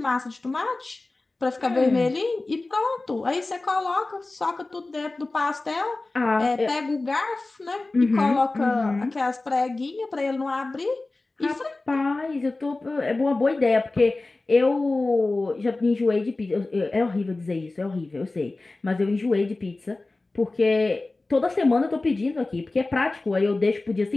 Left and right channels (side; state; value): right; quieter; 3.2 dB